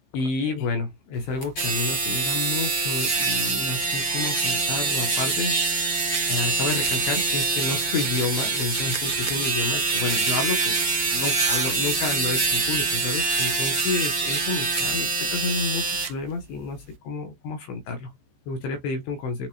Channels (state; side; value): late; right; 14 ms